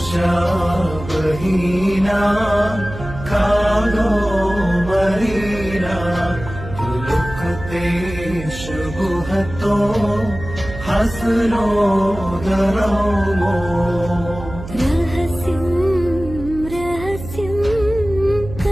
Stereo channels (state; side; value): noise; right; hum, 11 dB below the sound